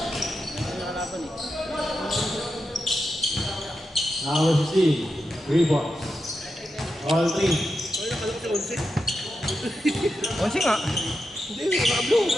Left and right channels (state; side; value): normal; both; correlation 0.88